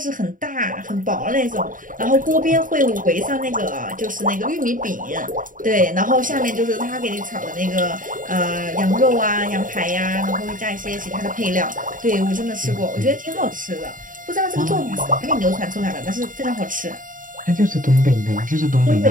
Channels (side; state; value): left; late; 0.39 ms